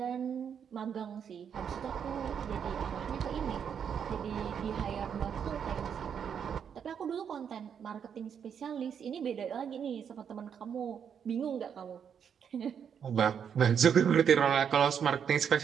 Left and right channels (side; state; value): left; quieter; 7.7 dB